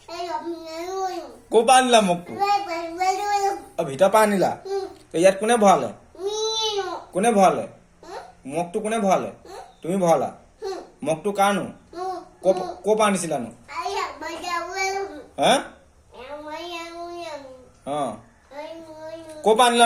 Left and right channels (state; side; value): identical; both; correlation 1.00